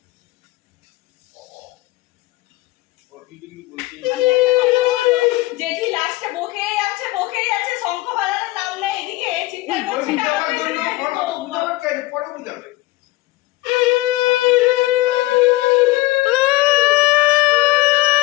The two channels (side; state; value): right; quieter; 19.9 dB